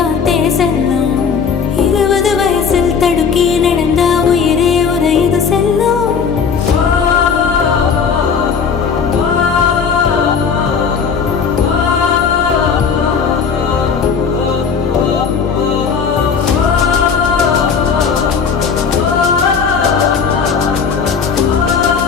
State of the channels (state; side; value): quieter; right; 6.2 dB